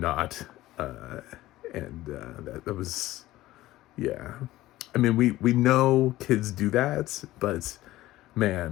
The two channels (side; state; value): right; quieter; 16.3 dB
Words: And that was, yeah. I mean, we know kids do that, but